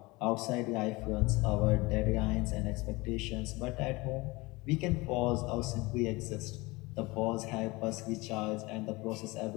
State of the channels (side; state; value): right; quieter; 23.3 dB